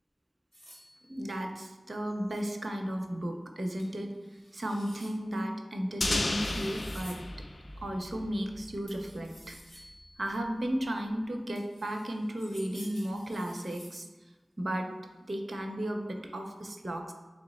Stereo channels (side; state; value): both; normal; correlation 0.96